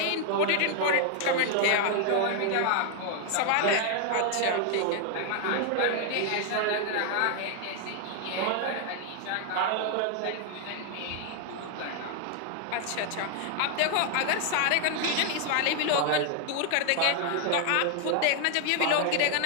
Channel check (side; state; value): both; different; correlation 0.00